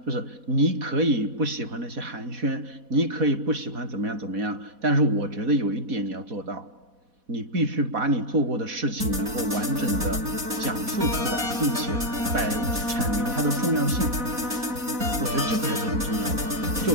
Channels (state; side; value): late; left; 4.1 ms